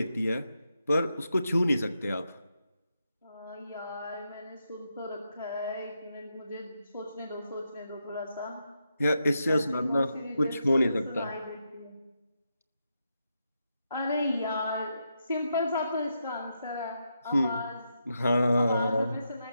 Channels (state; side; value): inverted; both; correlation -0.84